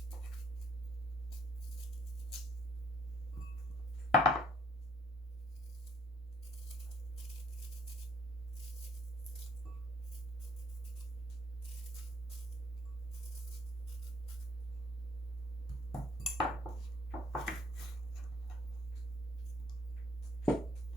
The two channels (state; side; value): normal; both; correlation 0.61